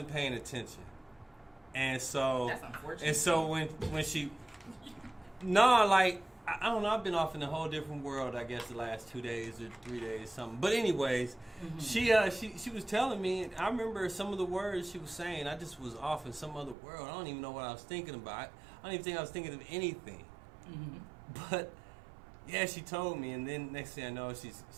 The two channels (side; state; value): left; drops out; at 16.8 s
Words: paying attention. And so that's unfortunate. And so when she, I don't know. I've been off in a whole different world. I guess the last 2 days or 3 days, something. But anyways, she was telling me. I remember some of the words she was saying. I just was off in some other world. I don't even know what I was thinking about. I don't even think I was thinking of anything. But yeah, she told me, and then next thing I know, she's